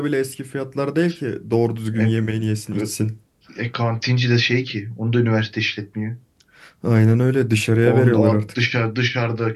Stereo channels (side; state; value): both; identical; correlation 1.00